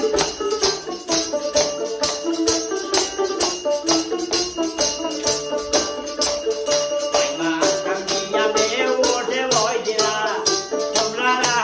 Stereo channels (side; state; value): both; identical; correlation 1.00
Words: মা কামিয়া বে ওঠে বইলা তোমরা